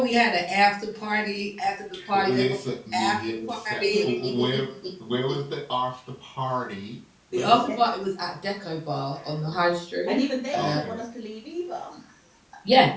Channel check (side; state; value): both; identical; correlation 1.00